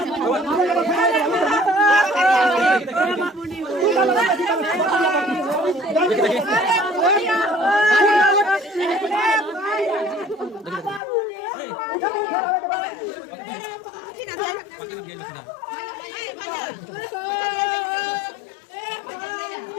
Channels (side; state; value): right; drops out; at 11.0 s